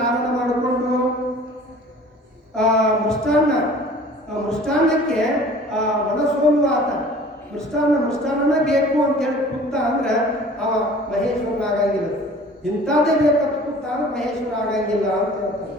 ಮಾಡಿಕೊಂಡು ಮೃಷ್ಟಾನ್ನಕ್ಕೆ ಮನಸೋಲು ಆತ ಮೃಷ್ಟಾನ್ನ ಬೇಕು ಅಂತ ಹೇಳಿ ಕೂತ ಅಂದ್ರೆ ಅವ ಮಹೇಶ್ವರನ ಆಗಂಗಿಲ್ಲ. ಇಂಥದ್ದೇ ಬೇಕಂತ ಕೂತ ಅಂದ್ರೆ ಮಹೇಶ್ವರ ಆಗಂಗಿಲ್ಲ ಅಂತ ಹೇಳ್ತಾರೆ.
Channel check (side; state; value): both; normal; correlation 0.47